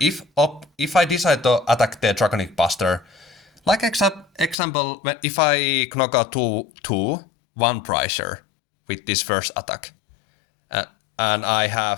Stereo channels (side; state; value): right; drops out; at 4.5 s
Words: I decide to attack the Draconic Buster, like example, if I knock out two one pricer with this first attack, and I